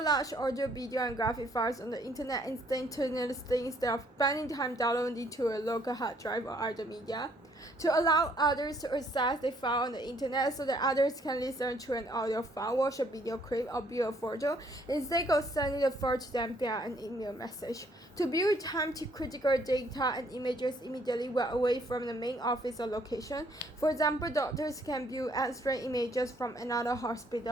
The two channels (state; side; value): normal; both; correlation 0.66